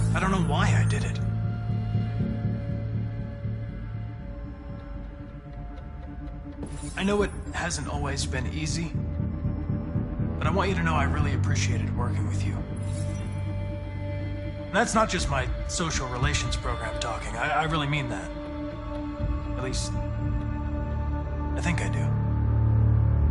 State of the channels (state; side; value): identical; both; correlation 1.00